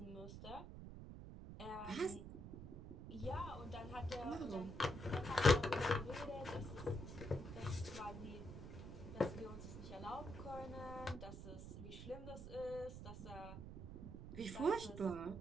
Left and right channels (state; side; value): noise; right; rumble, 10 dB below the sound